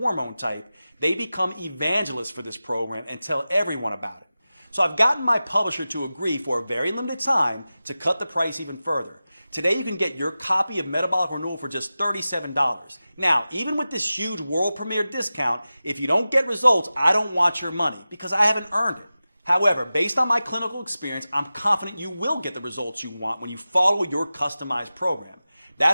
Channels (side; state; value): both; inverted; correlation -0.95